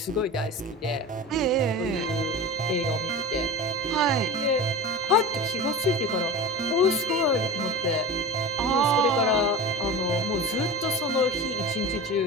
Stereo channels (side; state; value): both; normal; correlation 0.30